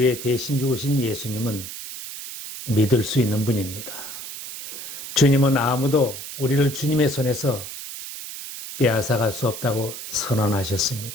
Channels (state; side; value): noise; right; hiss, 10 dB below the sound